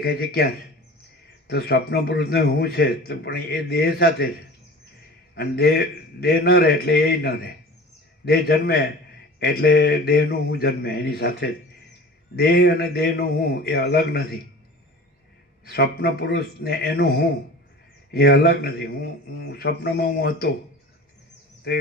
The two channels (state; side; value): normal; both; correlation 0.40